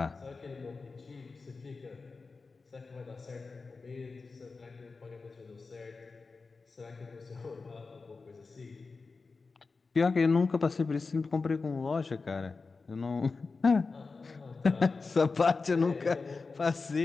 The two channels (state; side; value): quieter; right; 4.2 dB